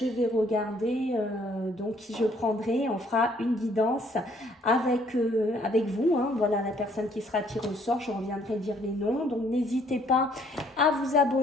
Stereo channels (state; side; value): normal; both; correlation 0.64